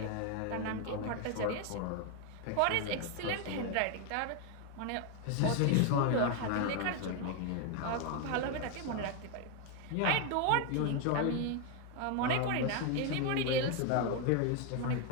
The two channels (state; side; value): different; both; correlation 0.01